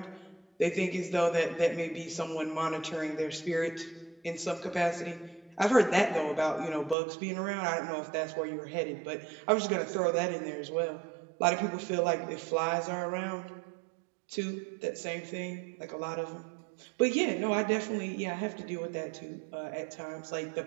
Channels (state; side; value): drops out; left; at 7.0 s